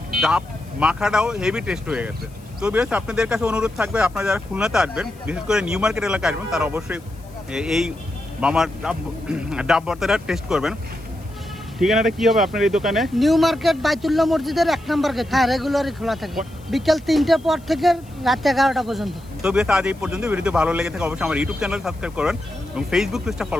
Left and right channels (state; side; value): noise; left; hiss, 27 dB below the sound